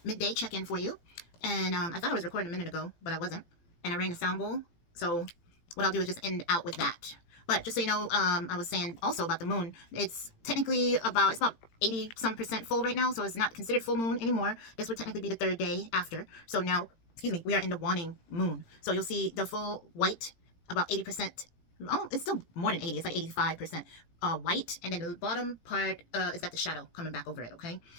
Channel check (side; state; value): right; late; 18 ms